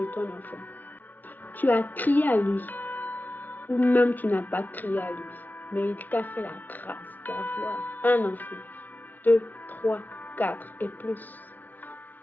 ton enfant. Tu as crié à lui, ou même tu n'as pas crié à lui, mais il t'a fait la grâce d'avoir un enfant, 2, 3, 4 et plus.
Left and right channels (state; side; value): late; right; 0.082 ms